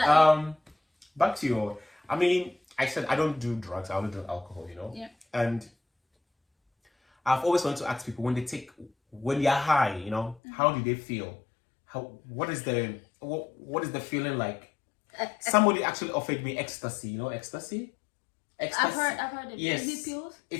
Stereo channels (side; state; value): right; drops out; at 10.4 s